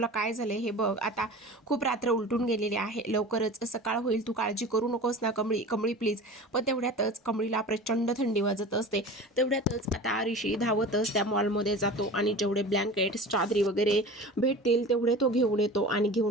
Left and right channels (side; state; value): both; normal; correlation 0.36